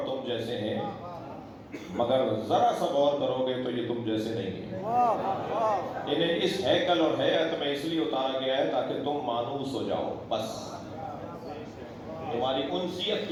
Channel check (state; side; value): identical; both; correlation 1.00